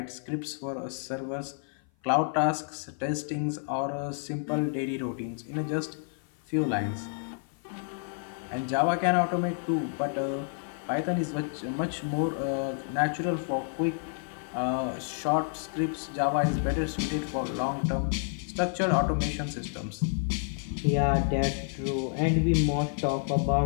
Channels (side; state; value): right; silent; 55 dB below the other